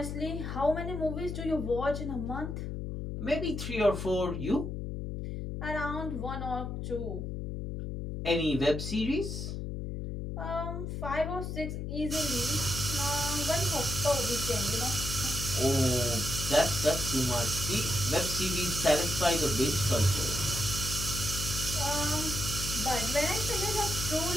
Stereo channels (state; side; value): noise; left; hum, 5 dB below the sound